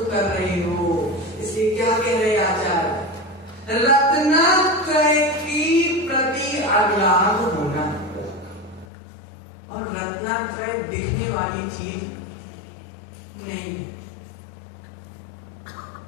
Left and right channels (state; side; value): drops out; right; at 8.8 s